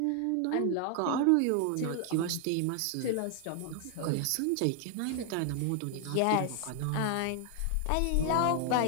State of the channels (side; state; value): both; different; correlation 0.00